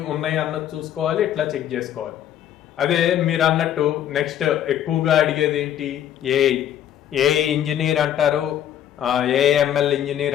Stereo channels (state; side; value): quieter; right; 10.6 dB